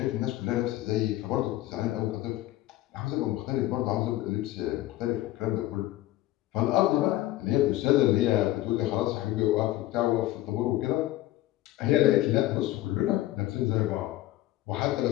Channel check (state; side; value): quieter; right; 15.9 dB